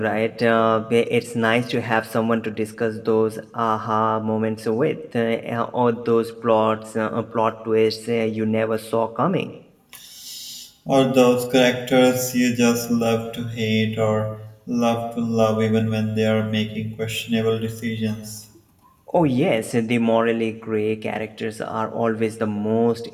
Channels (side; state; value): both; identical; correlation 1.00